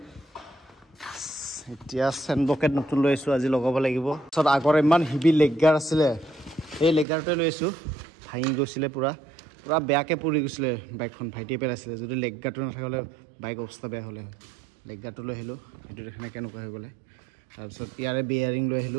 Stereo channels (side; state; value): left; drops out; at 7.1 s